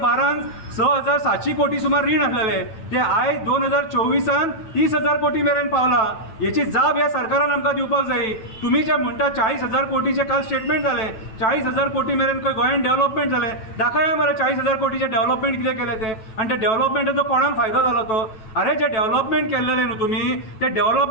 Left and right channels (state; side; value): late; right; 9.2 ms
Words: 6,700 कोटी सुमार रीण आसलेले ते आयज 2024 30,000 कोटी मेरेन पावला। याची जाप ह्या सरकारान आमकां दिवपाक जाय। तुमी जे म्हणटा 40,000 कोटीचे काल स्टेटमेंट जाले, 40,000 कोटी मेरेन खंय गोंयान डेव्हलपमेंट जाले, दाखया मरे 40,000 कोटीचे डेव्हलपमेंट कितें केले ते, आनी ते डेव्हलपमेंटाचो कोणाक फायदो जालो तो। अरे जे डेव्हलपमेंट केल्लेले न्हू तुमी ते